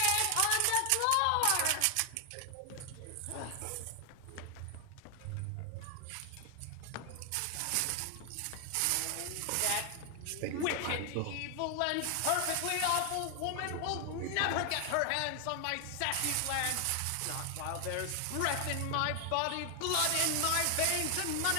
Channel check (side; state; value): both; different; correlation 0.00